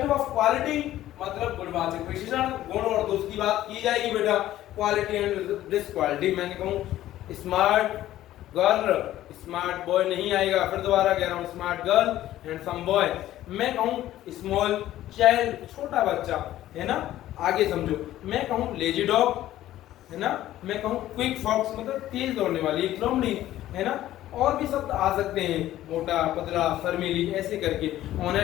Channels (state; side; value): quieter; right; 13.8 dB